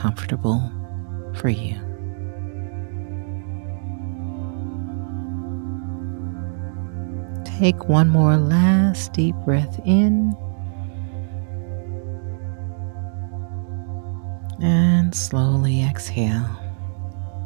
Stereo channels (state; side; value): silent; left; 64 dB below the other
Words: for you. Take one more last deep breath in and slowly exhale.